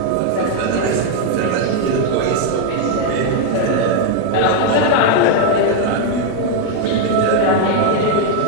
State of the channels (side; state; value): both; different; correlation 0.00